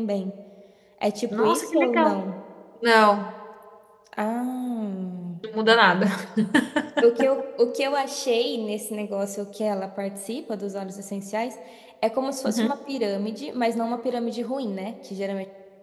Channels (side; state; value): both; identical; correlation 1.00